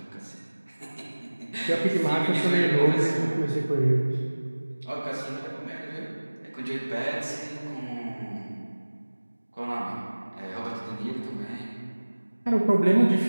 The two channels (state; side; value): inverted; both; correlation -1.00